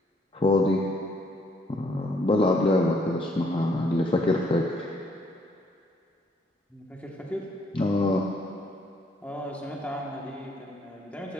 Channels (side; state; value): both; normal; correlation 0.67